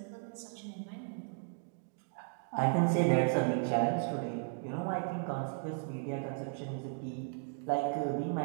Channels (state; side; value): silent; left; 54 dB below the other